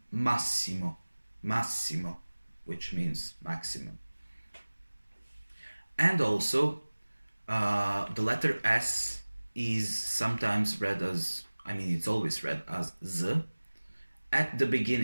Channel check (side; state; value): both; inverted; correlation -1.00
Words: massimo, massimo, which means maximum. And also, the letter S is sometimes read as, it's always read as Z at the